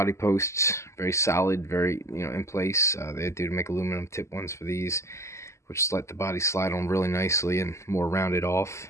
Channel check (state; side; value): late; right; 0.13 ms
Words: posts, very solid, very, you know, in place. They do make aluminum tip ones for these, which just let the body slide on really nicely and more rounded off.